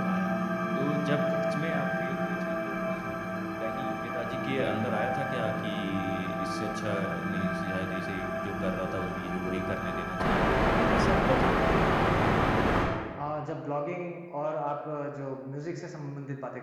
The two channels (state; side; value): identical; both; correlation 1.00